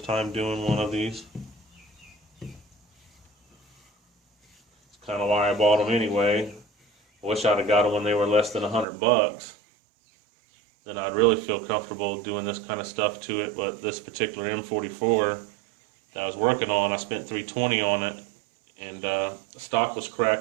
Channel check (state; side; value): drops out; left; at 8.8 s